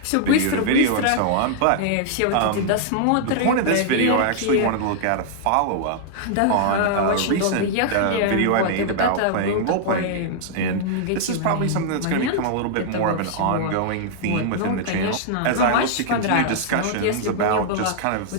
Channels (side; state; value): both; different; correlation -0.01